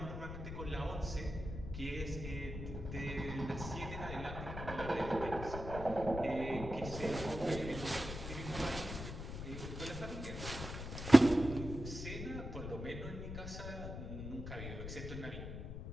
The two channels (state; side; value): noise; left; rumble, 7 dB below the sound